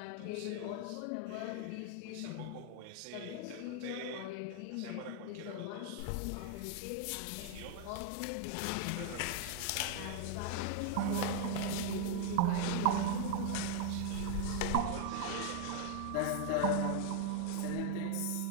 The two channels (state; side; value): different; both; correlation 0.00